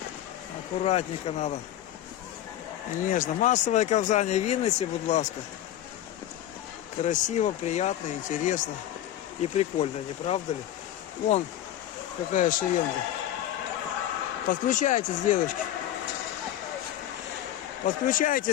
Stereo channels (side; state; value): right; quieter; 12.4 dB